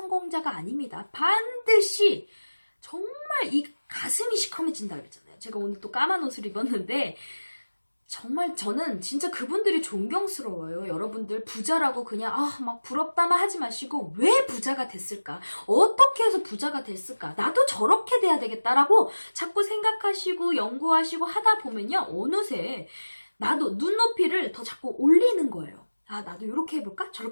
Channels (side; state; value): both; inverted; correlation -1.00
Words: 아닙니다. 반드시 정말 이 가슴이 시커매진다 그랬잖아요. 제가 오늘 또 까만 옷을 입었는데 정말 저는 진짜 그분들이 존경스러워요. 여러분들 부자라고 그냥 막 부럽다만 하지 마시고 왜 부자가 됐을까? 어떻게 해서 부자가 됐을까? 나도 저렇게 돼야 되겠다라고 자꾸 생각하시고 연구하시고 하다 보면요. 어느새 나도 눈높이를 더 자꾸 올리는 거예요. 나도 이렇게 해볼까?